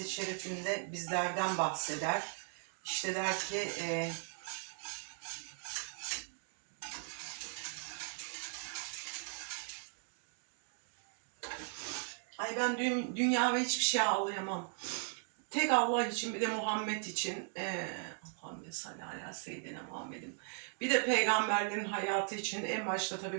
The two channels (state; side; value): silent; left; 52 dB below the other